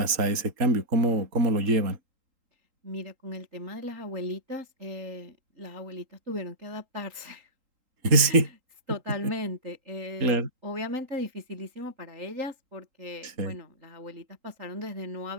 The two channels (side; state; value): left; late; 3.8 ms